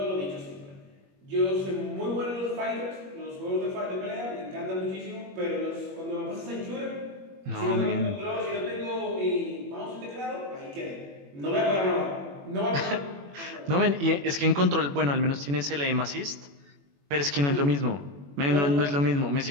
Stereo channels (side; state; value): left; late; 21 ms